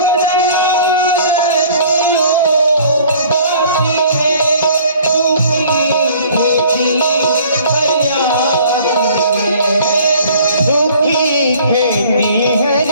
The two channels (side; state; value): both; inverted; correlation -0.52